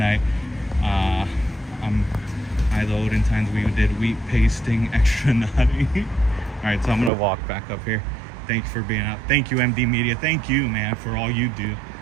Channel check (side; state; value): left; drops out; at 7.1 s